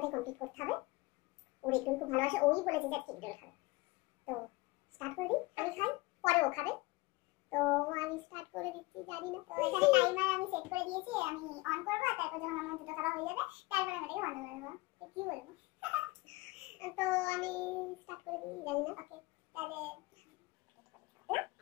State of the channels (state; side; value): quieter; right; 22.5 dB